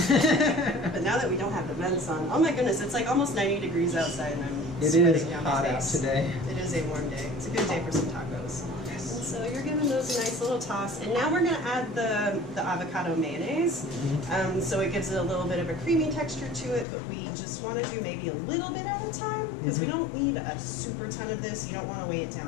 But now that we don't have the vents on, oh my goodness, it's like almost 90 degrees outside, and I'm sweating down my face. It is hot out today. It is a warm day. It's a good day for some tacos. And so you're giving those a nice little toss, and now we're going to add the avocado mayonnaise. So it gives it a little bit of a creamy texture to it, but we just want to do maybe a little bit at a time, because we don't need a super ton of this. You don't want to weigh it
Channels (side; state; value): right; drops out; at 16.9 s